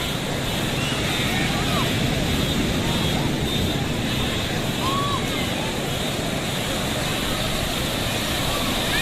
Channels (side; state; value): both; identical; correlation 1.00